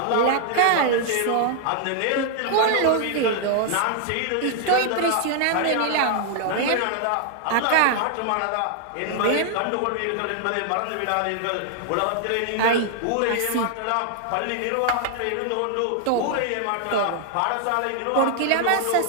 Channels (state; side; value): different; both; correlation 0.00